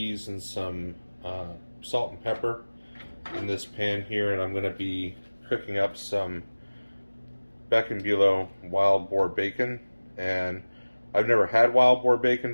and some salt and pepper in this pan here, and I'm going to be cooking up some Beck and Bulow wild boar bacon. And I've never had wild boar bacon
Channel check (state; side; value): inverted; both; correlation -1.00